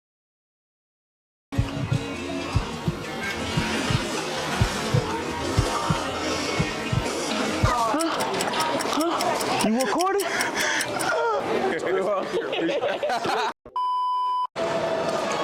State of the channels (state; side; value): identical; both; correlation 1.00